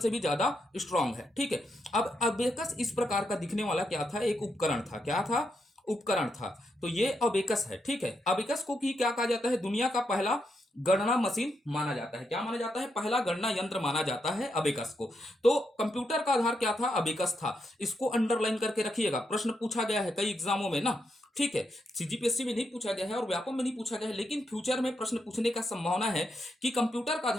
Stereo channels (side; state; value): both; normal; correlation 0.82